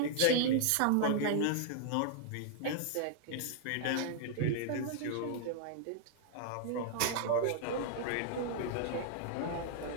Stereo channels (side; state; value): both; different; correlation -0.01